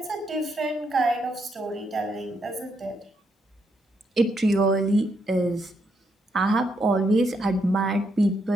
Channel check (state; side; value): normal; both; correlation 0.77